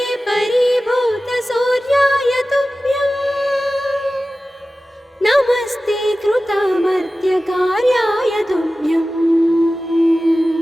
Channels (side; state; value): both; normal; correlation 0.95